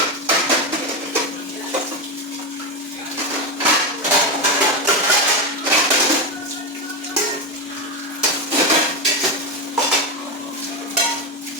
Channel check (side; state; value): both; normal; correlation 0.13